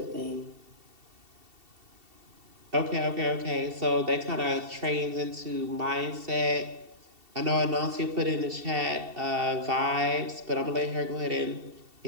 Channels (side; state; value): left; late; 2.7 ms